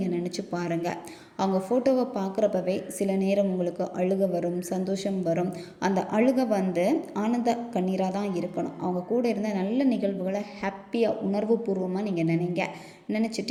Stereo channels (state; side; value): identical; both; correlation 1.00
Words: நினச்சி பாருங்கள். அவங்க ஃபோட்டோவை பார்க்குறப்பவே சில நேரம் உங்களுக்கு அழுகை வரும், சந்தோஷம் வரும். அந்த அழுகை வந்து ஆனந்த கண்ணீராக தான் இருக்கணும். அவங்க கூட இருந்த நல்ல நிகழ்வுகளை ஹாப்பியாக உணர்வுபூர்வமாக நீங்கள்